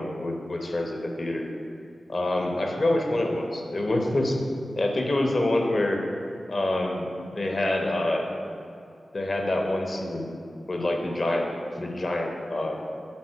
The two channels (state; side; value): normal; both; correlation 0.95